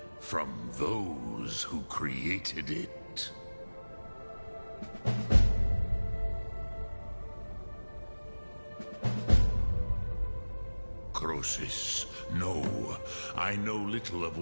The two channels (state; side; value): inverted; both; correlation -1.00